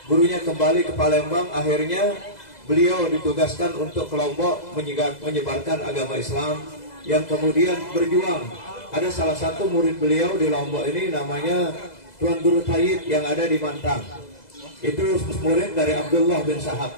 gurunya kembali ke Palembang. Akhirnya beliau ditugaskan untuk ke Lombok menyebarkan agama Islam, yang kemudian berjuang. Ada salah satu murid beliau di Lombok ini namanya Tuan Guru Tayyib yang ada di Mantang. Itu murid dari Abdullah bin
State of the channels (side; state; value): right; late; 2.0 ms